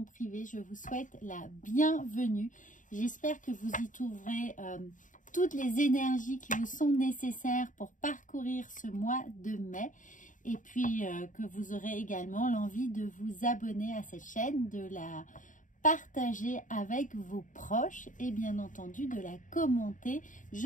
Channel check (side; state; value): right; late; 0.37 ms